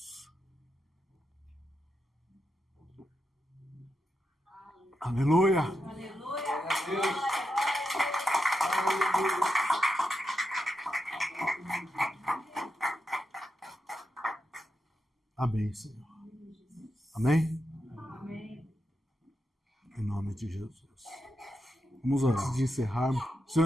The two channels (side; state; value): both; normal; correlation 0.87